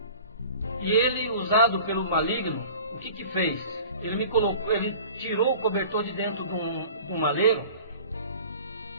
e ele, usado pelo maligno, o que fez? Ele tirou o cobertor de dentro de um maleiro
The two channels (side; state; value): both; inverted; correlation -0.43